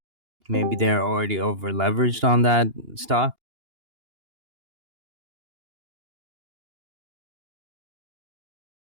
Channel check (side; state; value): left; late; 2.8 ms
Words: Maybe they're already over leveraged on that stock.